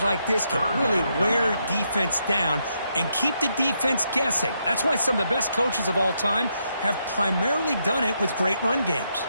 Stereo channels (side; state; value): both; inverted; correlation -0.79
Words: like this can really wear defense down and keep the defense guessing. That's why some of the best coaches of all time have primarily done it with great run games.